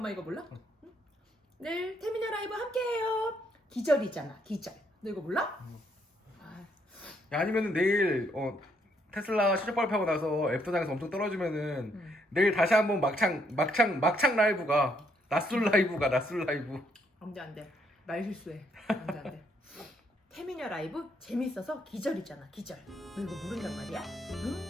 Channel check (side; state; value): both; normal; correlation 0.72